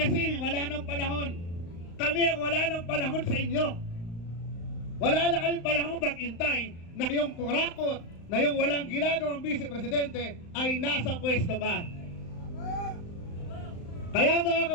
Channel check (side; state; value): right; late; 35 ms